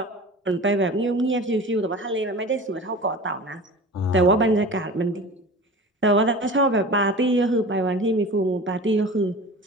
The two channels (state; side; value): normal; both; correlation 0.36